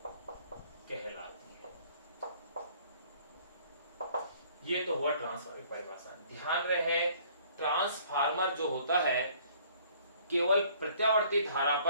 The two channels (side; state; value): both; inverted; correlation -0.57